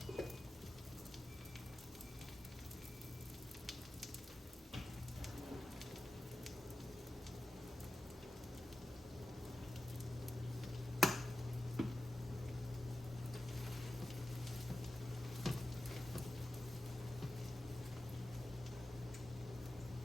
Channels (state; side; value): normal; both; correlation 0.94